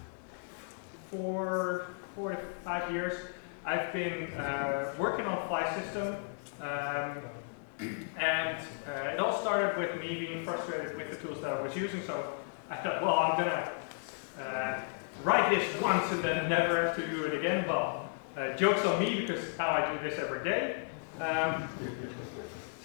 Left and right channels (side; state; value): right; silent; digital silence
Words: 4 to 5 years, I've been working on Flysystem, and it all started with me being frustrated with the tools that I was using. So I thought, well, I'm gonna write this once and then never have to do it again. Well, joke's on me, because now I do this every day.